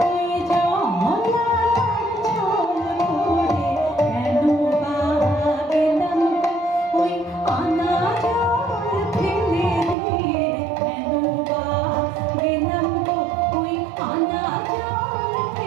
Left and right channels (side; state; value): left; drops out; at 10.0 s